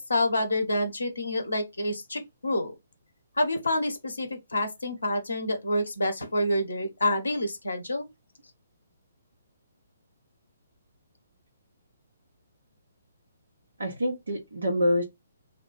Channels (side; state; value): both; inverted; correlation -0.83